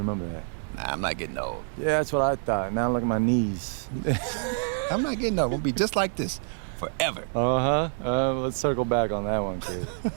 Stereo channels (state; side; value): silent; left; digital silence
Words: that. Nah, I'm not getting old. Yeah, that's what I thought. Now look at my knees. I'm not getting old. We'll be just like this forever. Let's circle back on that one, kid.